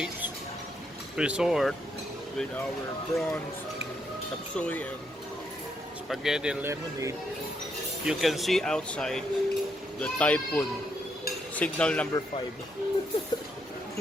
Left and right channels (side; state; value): both; normal; correlation 0.77